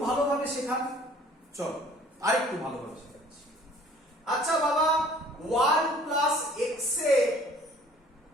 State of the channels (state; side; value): normal; both; correlation 0.53